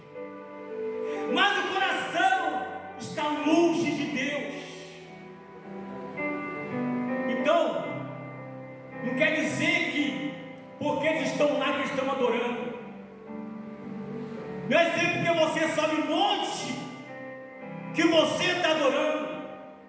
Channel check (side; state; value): both; identical; correlation 1.00